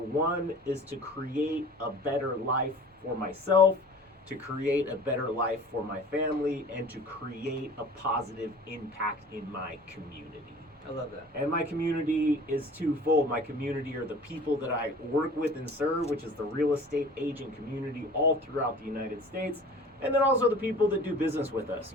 is to create a better life for myself, to create a better life for my family, and to create a positive impact in my community. I love that. And my community is twofold. My community are the people that I work with and serve, which is the real estate agent community all throughout the United States. And then also the people that do business with us,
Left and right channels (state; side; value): normal; both; correlation 0.44